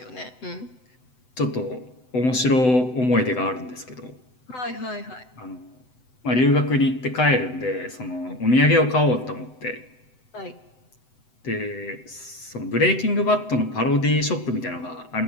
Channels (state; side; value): late; right; 7.9 ms